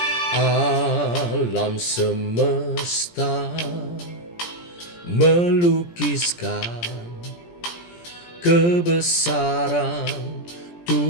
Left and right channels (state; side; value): late; right; 17 ms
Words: Alam semesta melukiskan kebesaran